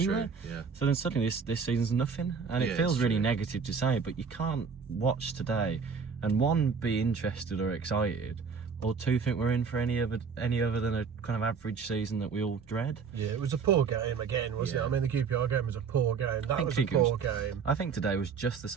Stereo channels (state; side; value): quieter; left; 5.8 dB